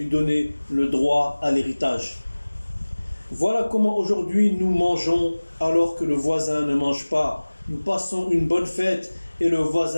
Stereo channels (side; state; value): both; inverted; correlation -1.00